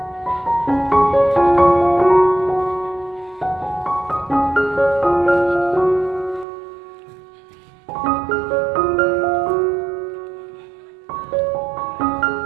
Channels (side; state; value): left; drops out; at 6.5 s